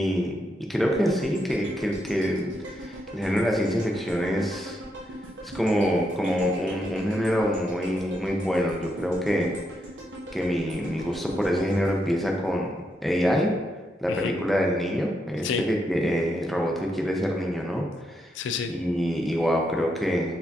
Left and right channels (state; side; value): normal; both; correlation 0.80